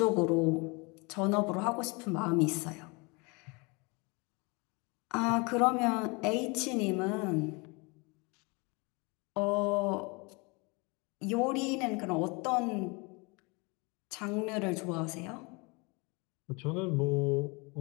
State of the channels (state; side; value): quieter; right; 28.8 dB